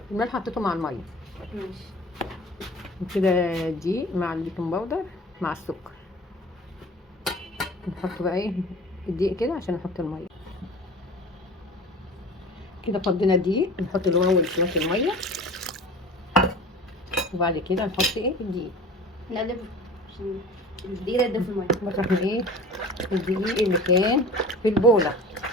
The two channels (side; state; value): both; normal; correlation 0.40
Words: الملح حطيته مع الميه ماشي، وكده الدقيق مع البيكنج باودر مع السكر. نحط بقى ايه الدقيق كده عشان نحط الميه. كده فضينا الدقيق، نحط الاول شويه الميه، وبعد كده نحط ايه الدقيق. نقلب عشان الدقيق يدوب في الميه. بطرح من ايه الدقيق اللي كان في البوله